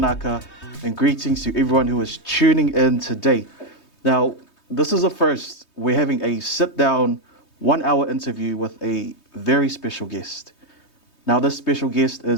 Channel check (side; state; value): right; late; 3.2 ms